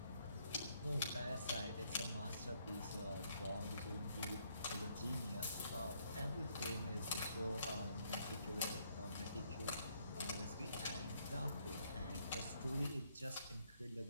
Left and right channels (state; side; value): inverted; both; correlation -0.70